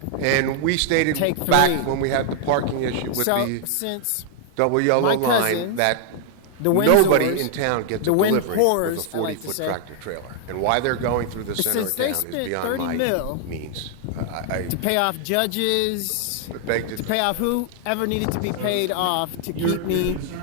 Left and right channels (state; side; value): different; both; correlation 0.00